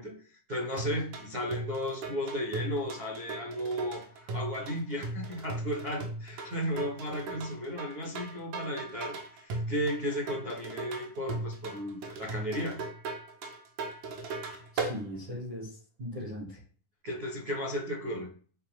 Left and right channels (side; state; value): left; late; 10 ms